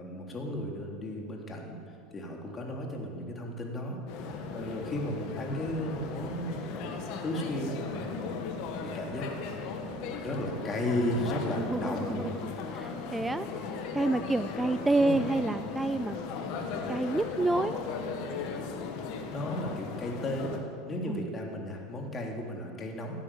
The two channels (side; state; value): both; normal; correlation 0.58